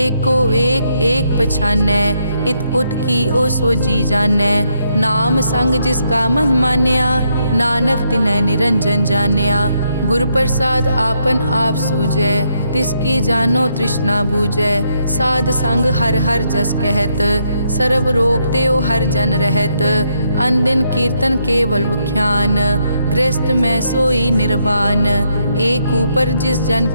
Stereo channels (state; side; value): inverted; both; correlation -0.76